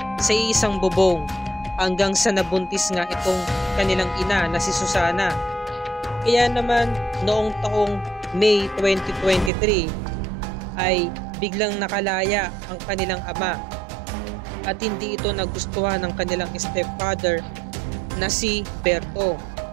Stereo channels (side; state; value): left; drops out; at 9.5 s